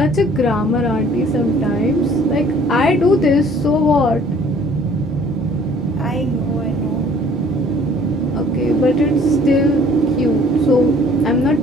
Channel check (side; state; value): both; normal; correlation 0.55